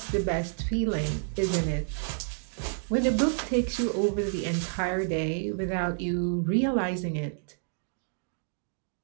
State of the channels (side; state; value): left; silent; digital silence